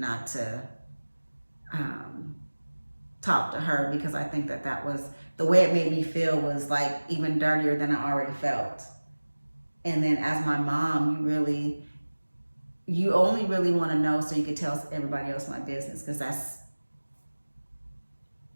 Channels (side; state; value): both; inverted; correlation -1.00